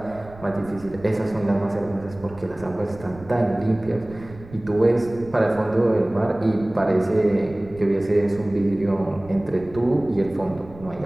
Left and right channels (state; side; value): noise; right; rumble, 19 dB below the sound